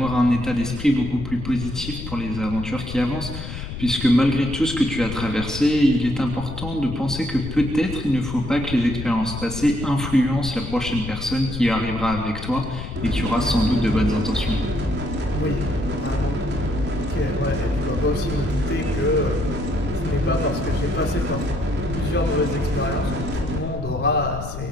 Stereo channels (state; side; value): noise; left; rumble, 8 dB below the sound